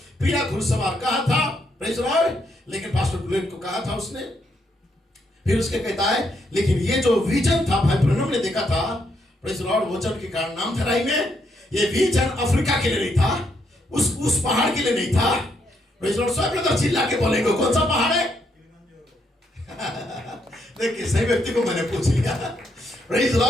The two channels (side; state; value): both; normal; correlation 0.76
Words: पीला घुड़सवार कहा था। Praise Lord. लेकिन पास्टर ब्लेड को कहा था उसने, फिर उसके कहता है, लेकिन ये जो विजन था भाई ब्रनम ने देखा था, प्रेज़ लॉर्ड, वचन के कारण नाम धराई में, ये विजन अफ्रीका के लिए नहीं था, उस पहाड़ के लिए नहीं था। Praise Lord. सब लोग चिल्ला के बोलेंगे कौन सा पहाड़ है? देखिए सही व्यक्ति को मैंने पूछ लिया। Praise